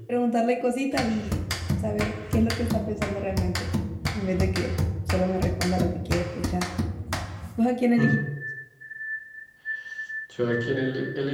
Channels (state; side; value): identical; both; correlation 1.00